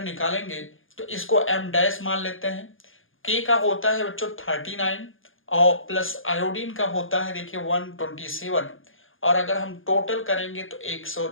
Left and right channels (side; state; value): right; late; 0.59 ms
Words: निकालेंगे तो इसको एम डैश मान लेते हैं। के का होता है बच्चों 39 और प्लस आयोडीन का होता है देखिए 127। और अगर हम टोटल करेंगे तो